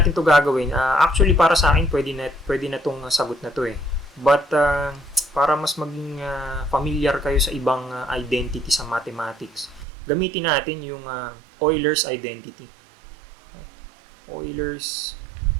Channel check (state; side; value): drops out; left; at 9.9 s